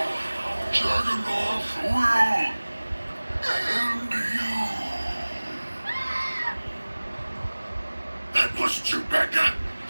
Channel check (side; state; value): both; inverted; correlation -1.00